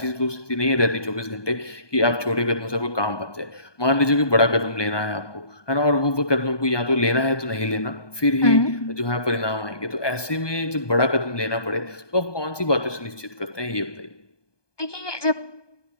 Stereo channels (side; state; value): right; late; 1.2 ms